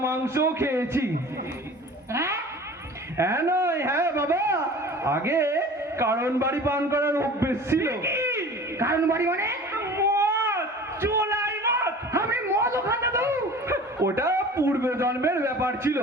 মাংসও খেয়েছি। হ্যাঁ নয়, হ্যাঁ বাবা, আগে কারণ বাড়ি পান করার অভ্যেস ছিল। কারণ বাড়ি মানে? মদ, চোলাই মদ। আমি মদও খান দাদু? ওটা পূর্ব জন্মের ব্যাপার ছিল,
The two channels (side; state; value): both; normal; correlation 0.42